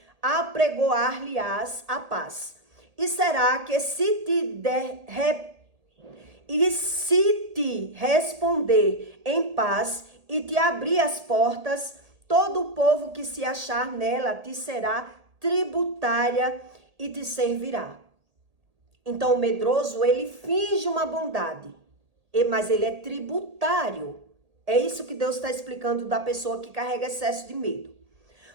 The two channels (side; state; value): left; late; 1.8 ms